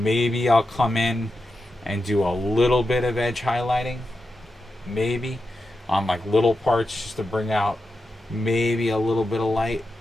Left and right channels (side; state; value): both; normal; correlation 0.89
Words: maybe I'll come in and do a little bit of edge highlighting, maybe on like little parts just to bring out maybe a little bit of light,